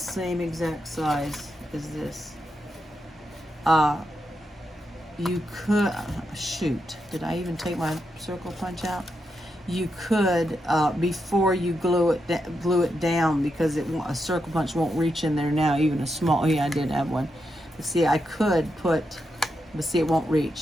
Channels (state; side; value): normal; both; correlation 0.84